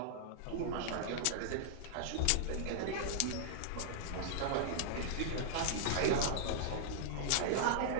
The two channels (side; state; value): both; different; correlation -0.01